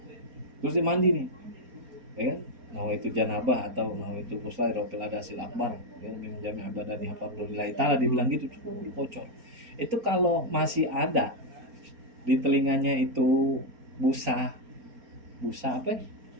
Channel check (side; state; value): left; late; 4.3 ms